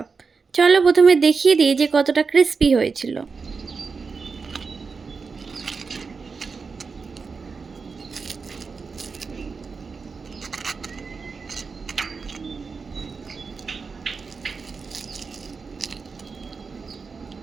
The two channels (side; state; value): left; quieter; 4.9 dB